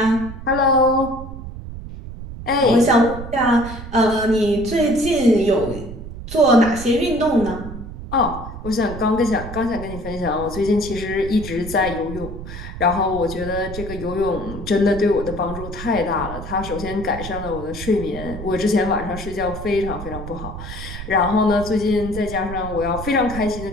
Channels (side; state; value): right; noise; rumble, 10 dB below the sound